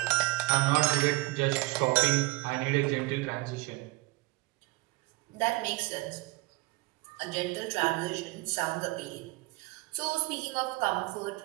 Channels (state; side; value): quieter; left; 22.6 dB